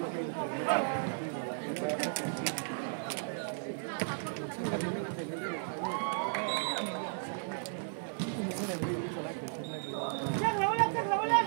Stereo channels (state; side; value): silent; left; 55 dB below the other